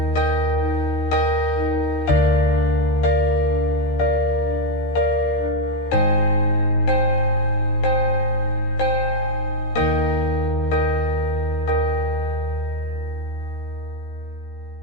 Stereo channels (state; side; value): late; right; 14 ms